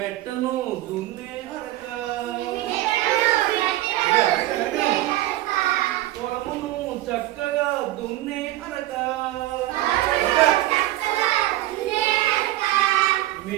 దున్నే అరక. పొలమును చక్కగా దున్నే అరక.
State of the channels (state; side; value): quieter; left; 15.9 dB